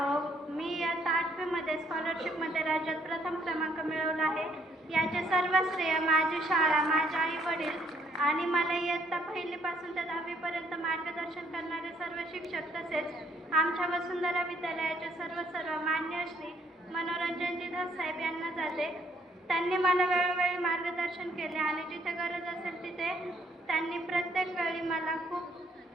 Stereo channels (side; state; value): both; normal; correlation 0.67